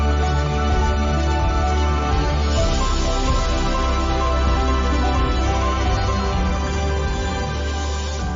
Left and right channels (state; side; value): identical; both; correlation 1.00